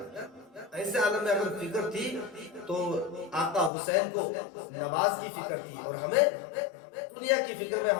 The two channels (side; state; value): right; drops out; at 3.7 s